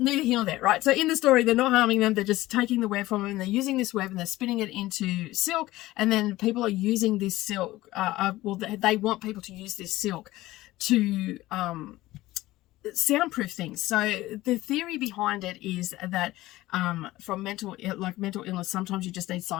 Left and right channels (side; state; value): right; quieter; 17.3 dB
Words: here nor there, right? So in the story, they're not harming them. They're just taking the web from them, and they're using this web and they're spinning it into silk, and then people are using this silk. They want people to use this silk to soundproof things. So the theory behind it is that from mental illness, sometimes you just need